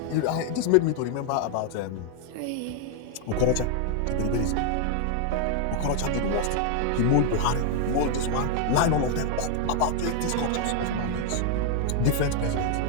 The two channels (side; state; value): both; different; correlation 0.00